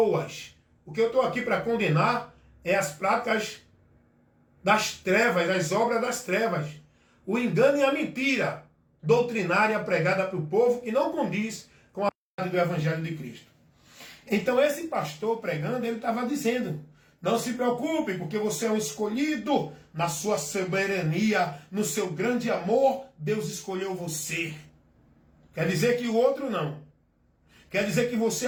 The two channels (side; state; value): both; identical; correlation 1.00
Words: O que eu estou aqui para condenar é as práticas das trevas, as obras das trevas. O engano e a mentira doutrinária pregada para o povo que não condiz com a verdade do Evangelho de Cristo. Então esse pastor pregando, ele estava dizendo, não se preocupe, porque você é um escolhido, na sua soberania, no seu grande amor, Deus escolheu você. Quer dizer que o outro não. Quer dizer que você